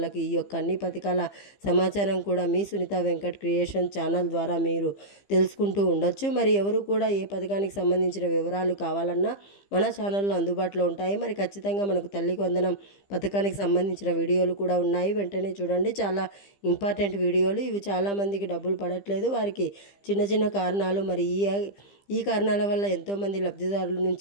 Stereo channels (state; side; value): late; right; 15 ms